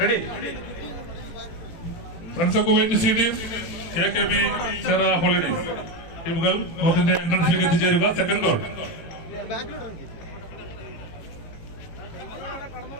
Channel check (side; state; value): right; late; 18 ms